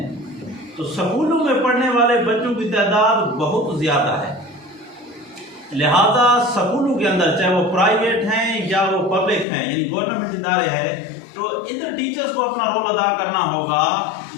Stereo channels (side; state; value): right; drops out; at 9.5 s